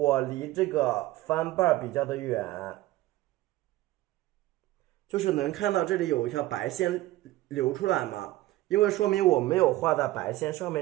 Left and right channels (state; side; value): quieter; left; 16.8 dB